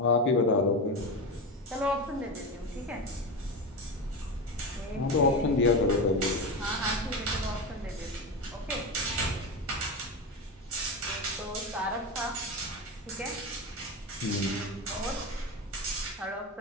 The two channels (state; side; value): normal; both; correlation 0.19